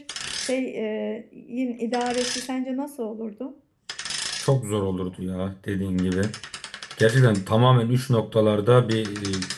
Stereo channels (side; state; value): both; identical; correlation 1.00